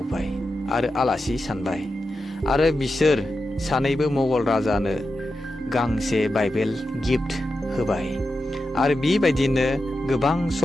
आरो आलासि सानबाय आरो बिसोर सानैबो मुगल राजानो गांसे बाइबेल गिफ्ट होबाय आरो बेबायदिनो गोबां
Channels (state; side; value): normal; both; correlation 0.90